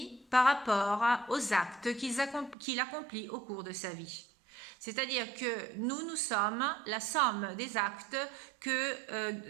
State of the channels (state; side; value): drops out; left; at 2.6 s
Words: par rapport aux actes qu'il accomplit au cours de sa vie. C'est-à-dire que nous sommes la somme des actes